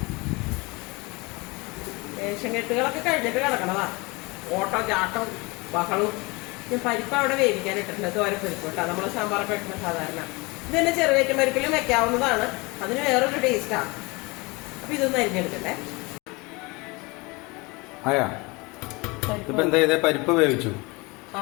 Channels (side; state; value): right; quieter; 25.9 dB